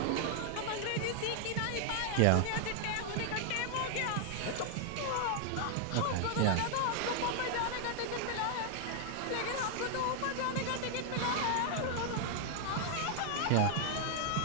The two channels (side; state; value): both; different; correlation 0.00